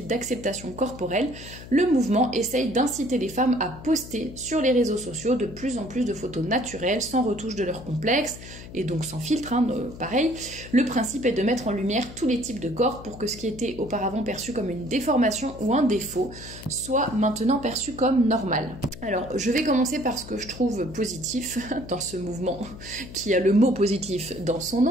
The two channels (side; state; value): left; noise; hum, 15 dB below the sound